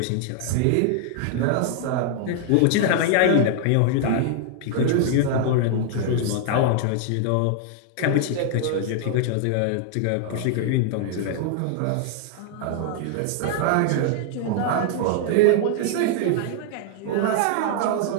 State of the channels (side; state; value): both; different; correlation 0.00